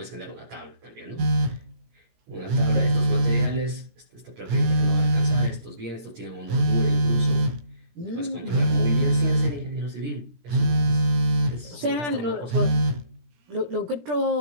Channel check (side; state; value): left; late; 17 ms